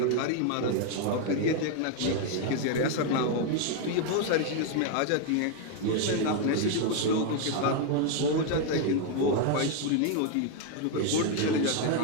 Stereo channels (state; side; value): different; both; correlation 0.01